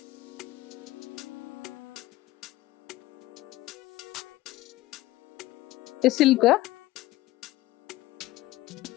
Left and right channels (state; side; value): quieter; right; 17.5 dB